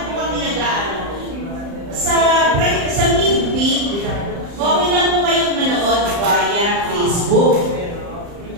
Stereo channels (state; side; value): late; left; 35 ms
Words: po kami nag-aano? Sa midweek, okay lang po kayong manood via Facebook.